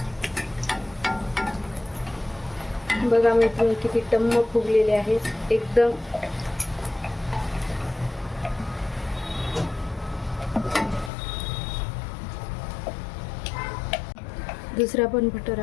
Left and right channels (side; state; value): right; drops out; at 11.1 s